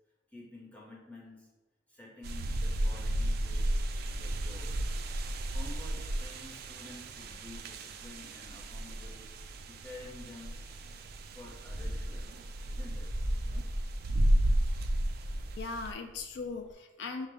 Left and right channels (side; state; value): both; normal; correlation 0.92